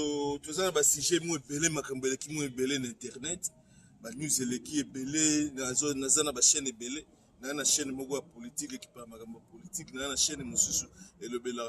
tozana ba sujet mo ebele makambo eleki mo ebele na internet ba news eleki ebele na zana ba chaîne ebele na chaîne moko ya politique qui parle makambo politique na chaîne mususu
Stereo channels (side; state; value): both; identical; correlation 1.00